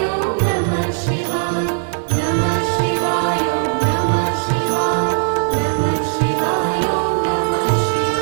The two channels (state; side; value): silent; left; 63 dB below the other